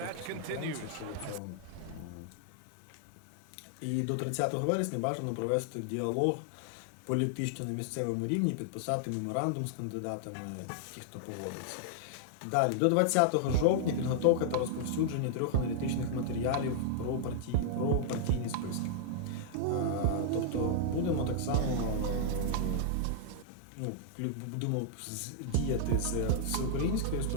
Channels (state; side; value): different; both; correlation -0.01